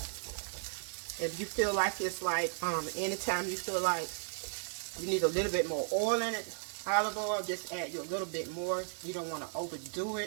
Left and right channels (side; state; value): left; silent; digital silence